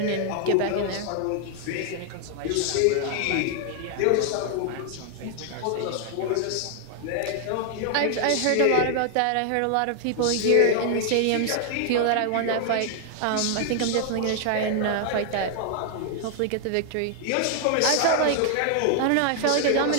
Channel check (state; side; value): different; both; correlation 0.00